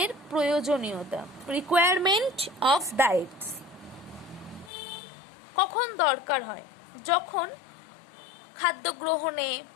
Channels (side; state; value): right; drops out; at 4.7 s